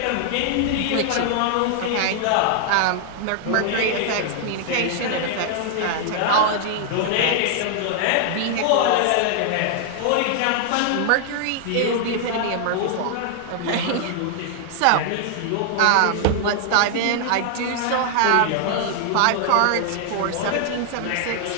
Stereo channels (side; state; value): both; different; correlation -0.01